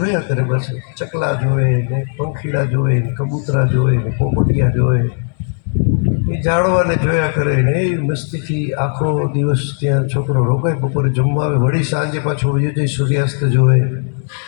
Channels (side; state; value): right; silent; 60 dB below the other